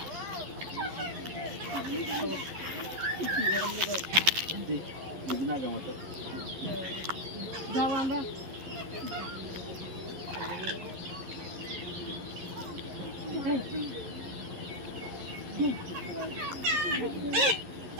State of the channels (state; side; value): late; left; 11 ms